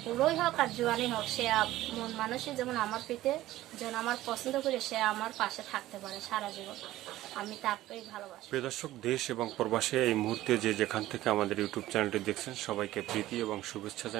বুড়োই হোক আর জোয়ানই হোক, সে মন মানুষই যেমন আমার পিতে যেন আমার পছন্দ করে সে আমার পাশে থাকতে পারে সারা জীবন, আমি তাকেই ভালোবাসি। প্রিয় দর্শক, দেশ এবং প্রবাসে এই মুহূর্তে যে যেখান থেকে আমাদের ইউটিউব চ্যানেলটি দেখছেন সবাইকে প্রীতি এবং শুভেচ্ছা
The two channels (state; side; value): quieter; left; 15.5 dB